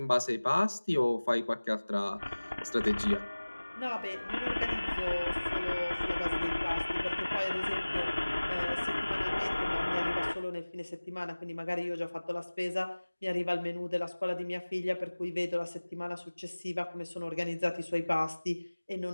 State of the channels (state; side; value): inverted; both; correlation -1.00